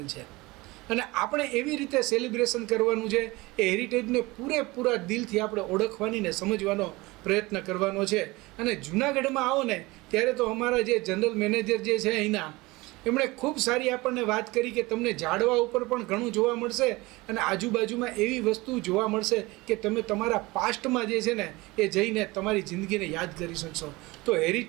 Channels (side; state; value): left; quieter; 22.0 dB